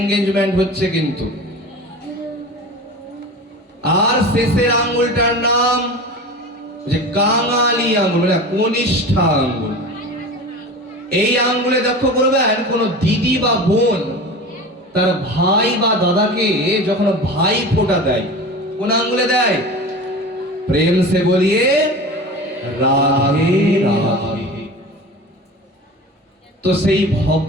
হচ্ছে কিন্তু। আর শেষের আঙ্গুলটার নাম যে কাঙালি আঙ্গুল, মানে কনিষ্ঠা আঙ্গুল। এই আঙ্গুলে লক্ষ্য করবেন কোন দিদি বা বোন তার ভাই বা দাদাকে যখন ভাই ফোঁটা দেয় কোন আঙ্গুলে দেয়? প্রেম সে বলিয়ে রাধে রাধে। তো সেই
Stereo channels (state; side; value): normal; both; correlation 0.33